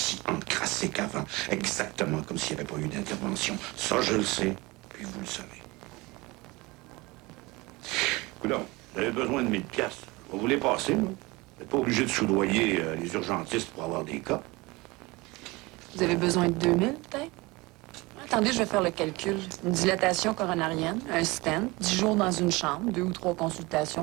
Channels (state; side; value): quieter; left; 23.2 dB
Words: encrassé qu'avant. Exactement comme s'il n'y avait pas eu d'intervention. Ça, je le sais, puis vous le savez. Coudonc, vous avez besoin de 1000 piastres. On va vous les passer, là. Vous n'êtes pas obligé de soudoyer les urgentistes pour avoir des cas. Vous avez besoin de 2000, peut-être? Attendez, je vais faire le calcul. Une dilatation coronarienne, un stent, 10 jours dans une chambre, 2 ou 3 consultations